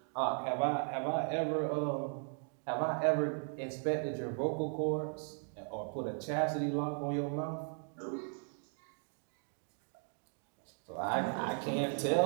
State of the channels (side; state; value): left; silent; 53 dB below the other